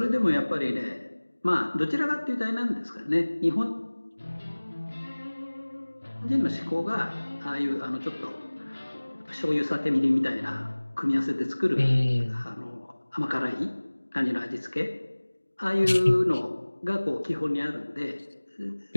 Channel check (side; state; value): both; inverted; correlation -1.00